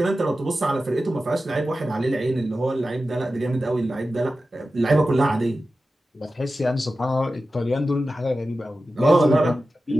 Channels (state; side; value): normal; both; correlation 0.93